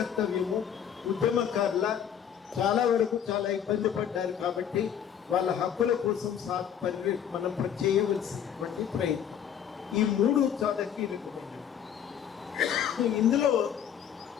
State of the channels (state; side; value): quieter; right; 8.9 dB